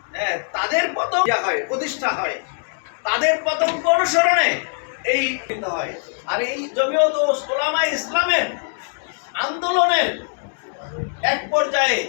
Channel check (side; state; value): right; silent; 64 dB below the other